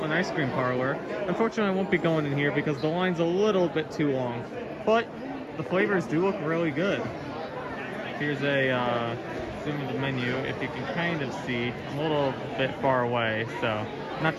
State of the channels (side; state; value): both; identical; correlation 1.00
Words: Ice Cream Parlor. Unfortunately, I won't be going in here because the line's a little bit too long, but the flavors do look really good. Here's a zoom of the menu. If you can kind of see, I'm a little bit far away, so not